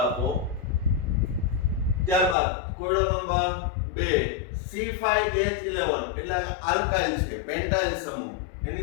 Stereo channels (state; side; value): drops out; right; at 2.4 s